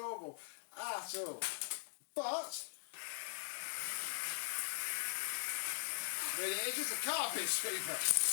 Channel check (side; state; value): right; silent; digital silence